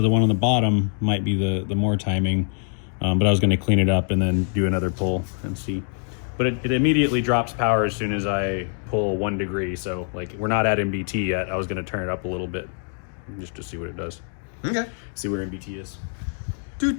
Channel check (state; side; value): silent; right; 55 dB below the other